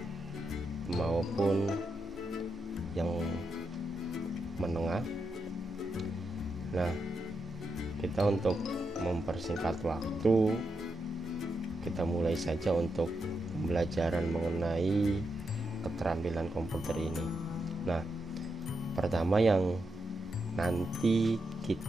maupun yang menengah. Nah, kita untuk mempersingkat waktu, kita mulai saja untuk pembelajaran mengenai keterampilan komputer ini. Nah, pertama yang nanti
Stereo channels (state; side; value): normal; both; correlation 0.84